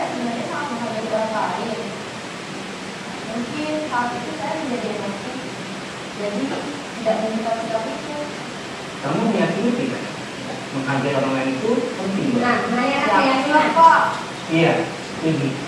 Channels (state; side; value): identical; both; correlation 1.00